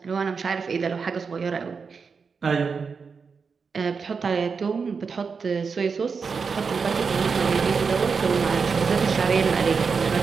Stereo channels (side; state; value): left; quieter; 5.4 dB